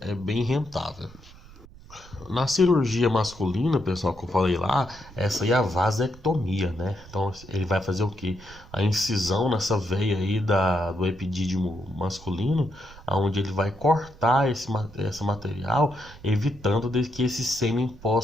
é bem rentável. Na cirurgia masculina, pessoal, que eu falei lá, essa aí é a vasectomia, né? Então ele vai fazer o quê? A incisão nessa veia aí do epidídimo masculino, onde ele vai cortar esse material, evitando que esse sêmen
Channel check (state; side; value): noise; right; rumble, 20 dB below the sound